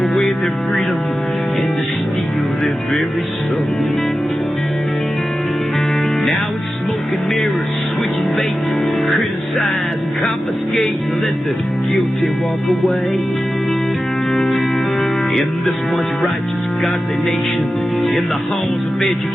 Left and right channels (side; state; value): both; normal; correlation 0.93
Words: their freedom and to steal their very soul. Now it's smoke and mirrors, switching bait, criticize and confiscate and let the guilty walk away. In this once righteous, godly nation, in the halls of